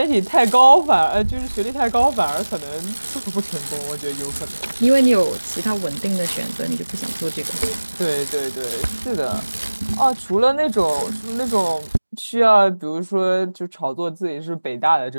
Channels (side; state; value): both; inverted; correlation -1.00